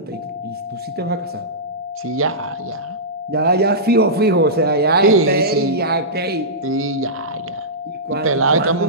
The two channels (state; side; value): normal; both; correlation -0.16